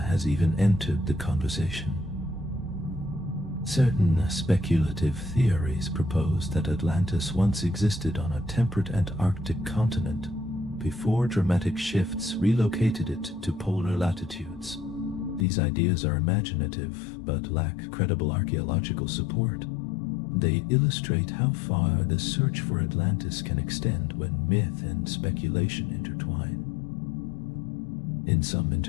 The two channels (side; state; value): right; drops out; at 15.5 s